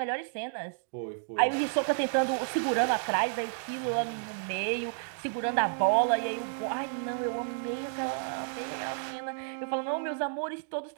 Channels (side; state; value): left; silent; digital silence